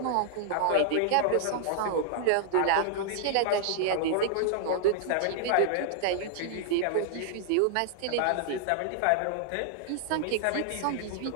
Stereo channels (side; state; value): both; different; correlation -0.01